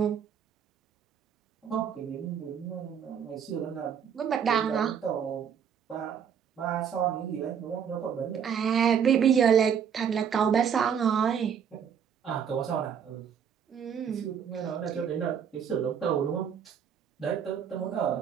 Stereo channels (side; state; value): left; quieter; 7.8 dB